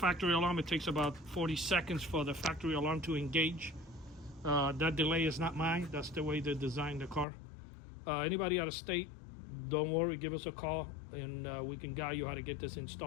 alarm, it takes about 40 seconds for the factory alarm to engage. That delay is not mine. That's the way they designed the car. Anybody out of state, don't worry, give us a call, and we can guide you how to get this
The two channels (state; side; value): drops out; right; at 7.2 s